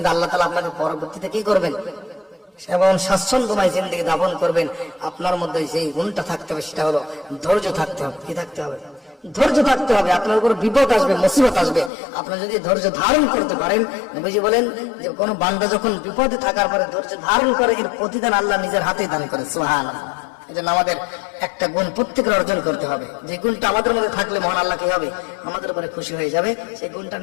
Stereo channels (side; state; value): right; drops out; at 11.9 s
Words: আল্লাহ তাআলা আপনাকে পরবর্তীতে কি করবেন, এবং স্বাচ্ছন্দ্যময় জিন্দেগি যাপন করবেন। আপনার মধ্যে যে গুণটা থাকতে হবে সেটা হলো ধৈর্য থাকতে হবে। কি থাকতে হবে? ধৈর্য থাকতে হবে। আপনার উপর বিপদ আসবে, মুসিবত আসবে, আপনার যদি ধৈর্য ধারণ করতে পারেন, নবীজি বলেন যে কোন বান্দা যখন বিপদে থাকার পরে ধৈর্য ধারণ করে, এর প্রতিদান আল্লাহ নিজের হাতেই দান করে। সুবহানাল্লাহ। এজন্য আমাদের একটা গুণ প্রত্যেকের অর্জন করতে হবে। যে গুণটা আমাদের মধ্যে থাকলে মহান আল্লাহ কি হবে, আমাদের উপরে খুশি হয়ে যাবে। সেই গুণটার